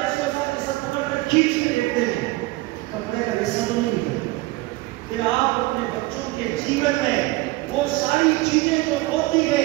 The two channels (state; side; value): quieter; left; 20.5 dB